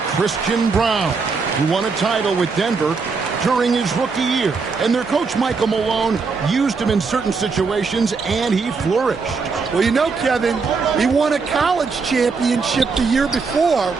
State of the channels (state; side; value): quieter; left; 4.8 dB